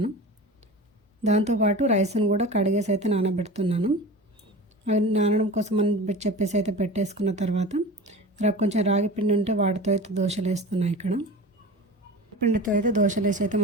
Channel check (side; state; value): both; normal; correlation 0.33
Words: దాంతోపాటు రైస్ను కూడా కడిగేసి అయితే నానబెడుతున్నాను. అవి నానడం కోసం అని చెప్పేసి అయితే పెట్టేసుకున్న తర్వాత కొంచెం రాగి పిండి ఉంటే వాటితో అయితే దోశలు వేస్తున్నాను. ఇక్కడ పిండితో అయితే దోశలు వేసి అయితే